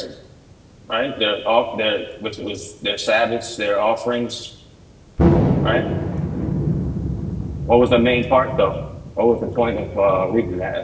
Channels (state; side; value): identical; both; correlation 1.00